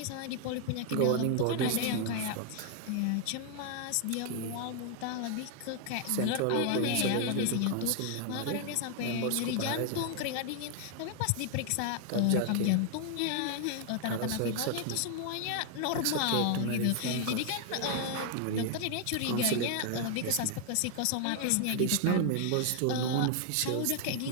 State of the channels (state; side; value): different; both; correlation 0.00